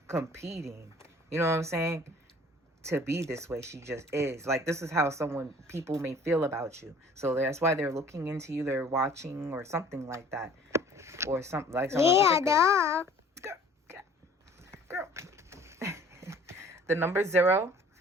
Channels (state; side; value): normal; both; correlation 0.51